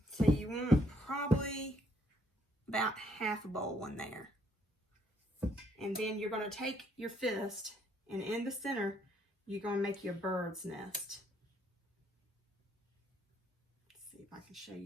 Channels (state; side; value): normal; both; correlation 0.69